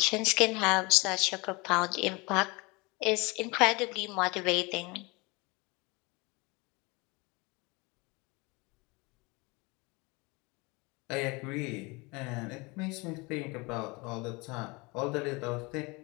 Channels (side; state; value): right; quieter; 26.2 dB